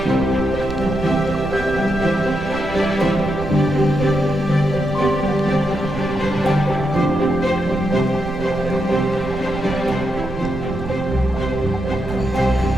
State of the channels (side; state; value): right; noise; rumble, 10 dB below the sound